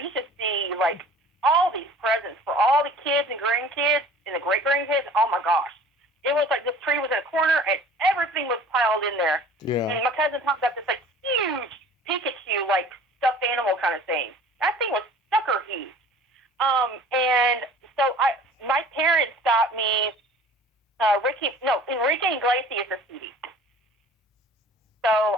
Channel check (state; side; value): normal; both; correlation 0.46